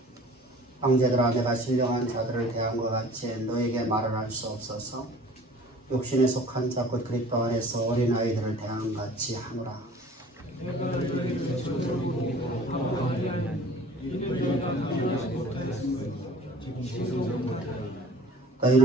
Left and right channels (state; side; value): normal; both; correlation 0.47